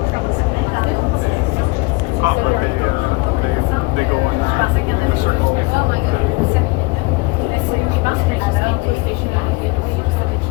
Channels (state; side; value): quieter; right; 25.3 dB